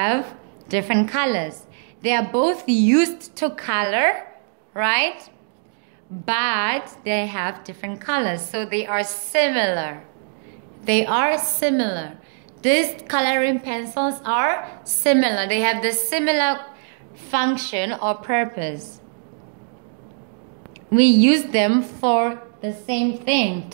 different colors. They are both used to color, right? But they have different colors, so they are similar. They are similar. These coloring pencils are similar. They have the similar function or purpose. We use them for the same thing,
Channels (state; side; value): silent; left; digital silence